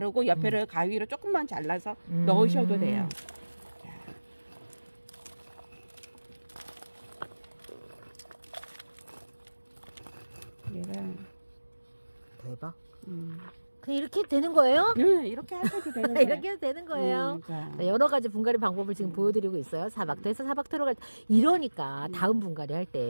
옆에를 가위로 조금만 잘라서 넣으셔도 돼요. 자. 얘가 대박. 그냥 이렇게 되는 거예요? 네, 이렇게 하셔도 되는 거예요. 이렇게 해도 되는 거예요. 자. 자, 여러 가지 분갈이 방법을 지금 보여드리고 있어요. 사박토에서 사박토로 갈 때. 이러니까 다음 분갈이 할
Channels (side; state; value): both; inverted; correlation -1.00